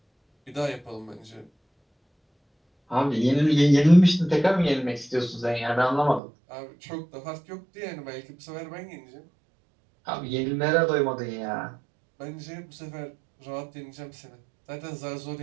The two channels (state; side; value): drops out; left; at 6.2 s